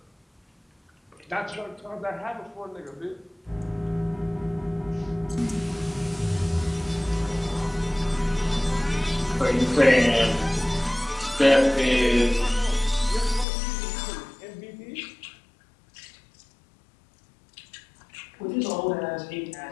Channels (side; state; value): right; drops out; at 13.5 s